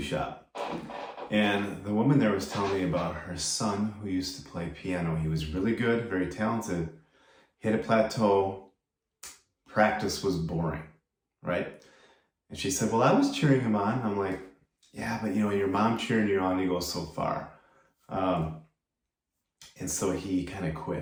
shop, and the woman there was telling me about her son who used to play piano. He was really good, very talented, hit a plateau, practice was boring, right? And she said, well, I was cheering him on. I'm like, yeah, but your mom cheering you on, you go so far. Um, and so he kind of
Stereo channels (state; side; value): identical; both; correlation 1.00